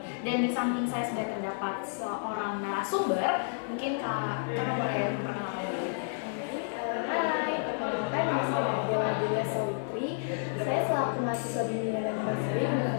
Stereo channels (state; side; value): silent; right; 57 dB below the other